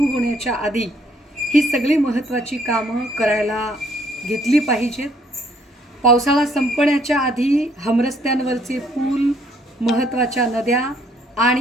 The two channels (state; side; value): normal; both; correlation 0.66